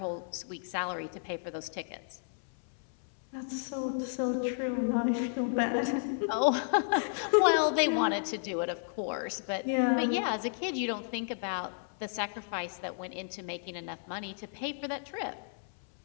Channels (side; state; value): right; silent; 56 dB below the other